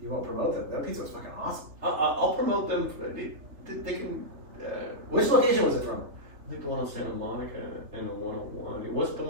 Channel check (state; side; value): late; left; 3.3 ms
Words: you won't promote them. That pizza was fucking awesome. I'll promote them. They can. Which location was it from? I think the one on Santa Monica and the 101. It wasn't the